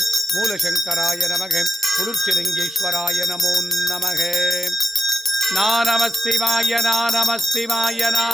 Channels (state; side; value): normal; both; correlation 0.82